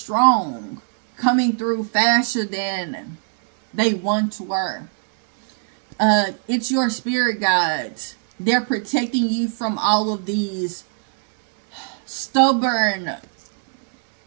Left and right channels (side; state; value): left; silent; digital silence